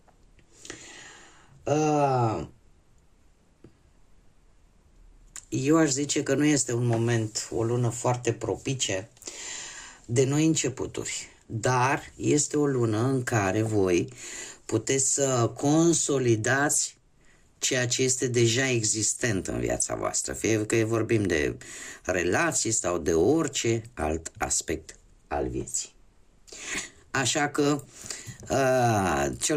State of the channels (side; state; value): both; identical; correlation 1.00